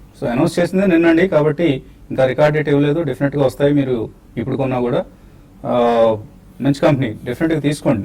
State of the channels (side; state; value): both; identical; correlation 1.00